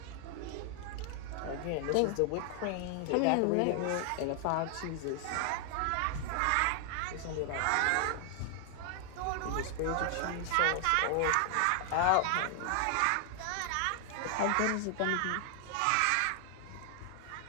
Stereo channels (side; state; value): both; different; correlation 0.00